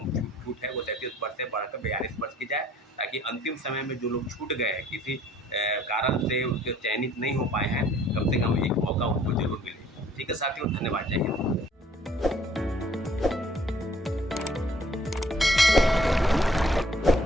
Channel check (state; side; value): normal; both; correlation 0.59